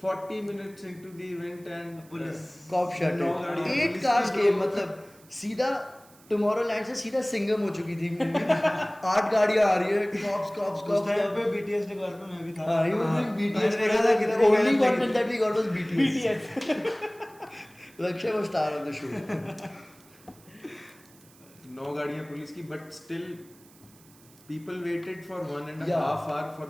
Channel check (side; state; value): right; noise; hiss, 26 dB below the sound